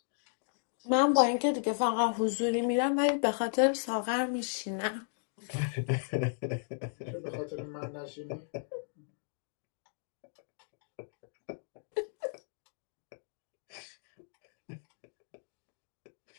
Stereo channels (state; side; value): silent; right; digital silence